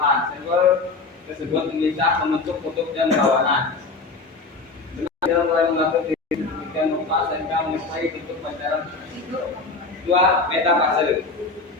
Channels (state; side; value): quieter; right; 3.9 dB